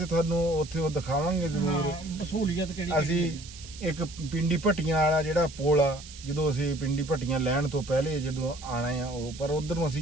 ਤੁਹਾਨੂੰ ਉੱਥੇ ਉਹ ਦਿਖਾਵਾਂਗੇ ਜ਼ਰੂਰ। ਸਹੂਲੀਅਤ ਕਿਹੜੀ ਅਸੀਂ ਇੱਕ ਪਿੰਡੀ ਭੱਟੀਆਂ ਵਾਲਾ ਜਿਹੜਾ ਪੁਲ ਆ, ਜਦੋਂ ਅਸੀਂ ਪਿੰਡੀ ਭੱਟੀਆਂ ਲੈਣ ਤੋਂ ਪਹਿਲੇ ਜਦੋਂ ਆਣਾ ਆ ਉਹ, ਪਰ ਉਧਰ ਨੂੰ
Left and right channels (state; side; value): noise; right; hiss, 16 dB below the sound